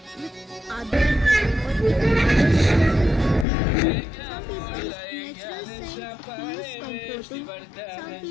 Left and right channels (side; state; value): right; drops out; at 3.5 s